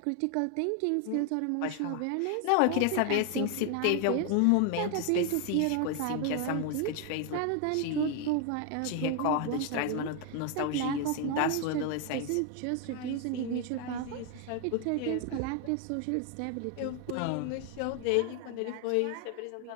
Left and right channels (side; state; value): both; different; correlation 0.01